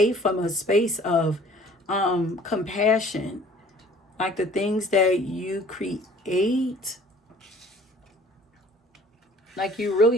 from a space of compassion. Like the things that you create, like you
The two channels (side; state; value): both; normal; correlation 0.52